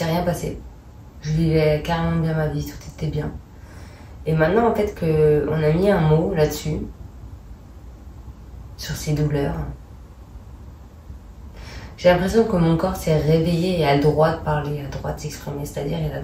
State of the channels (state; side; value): identical; both; correlation 1.00